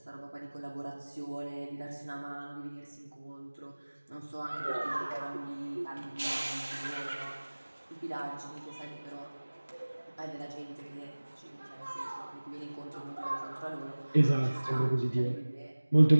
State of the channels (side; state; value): both; inverted; correlation -1.00